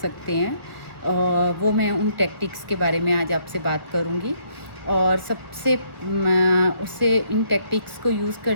हैं वो मैं उन टैक्टिक्स के बारे में आज आपसे बात करूँगी। और सबसे उससे इन टैक्टिक्स को यूज़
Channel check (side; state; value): left; late; 1.3 ms